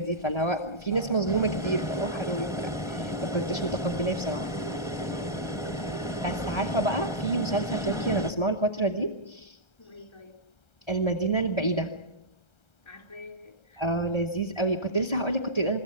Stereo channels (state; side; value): late; right; 1.3 ms